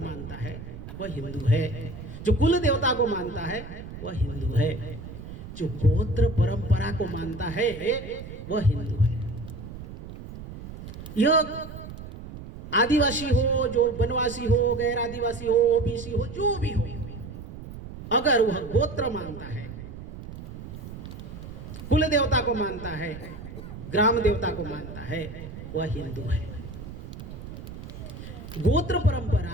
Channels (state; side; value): noise; right; rumble, 12 dB below the sound